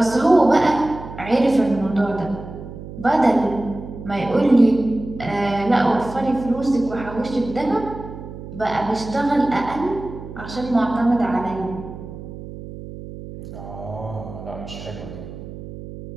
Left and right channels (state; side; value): noise; right; hum, 12 dB below the sound